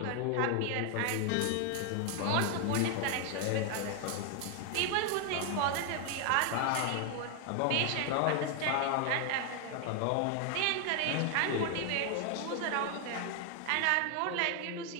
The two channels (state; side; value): different; both; correlation 0.00